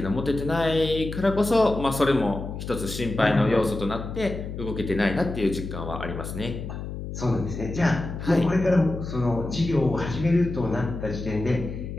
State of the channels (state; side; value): noise; left; hum, 7 dB below the sound